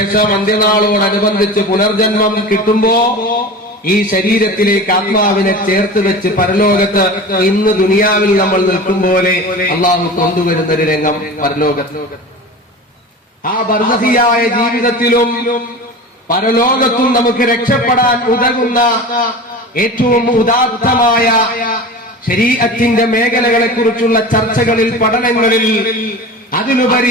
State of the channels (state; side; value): normal; both; correlation 0.33